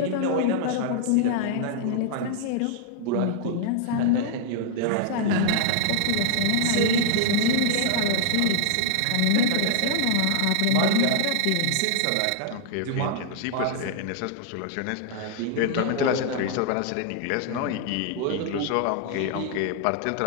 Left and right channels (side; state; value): both; different; correlation -0.01